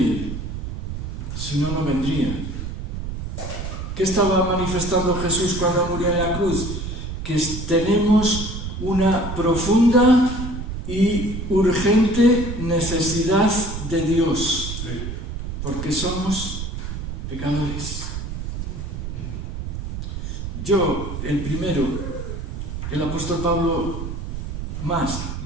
si no, no vendría. ¿Qué estaba manifestando Jesús cuando murió en la cruz? Que tenemos una profunda y urgente necesidad de Dios, porque somos pecadores. Yo, el primero, el apóstol Pablo más,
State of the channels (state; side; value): noise; right; rumble, 5 dB below the sound